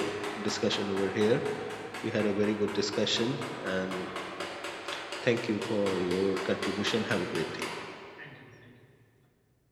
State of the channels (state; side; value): identical; both; correlation 1.00